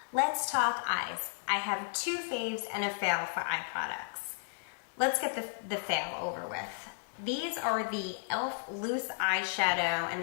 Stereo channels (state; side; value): silent; right; digital silence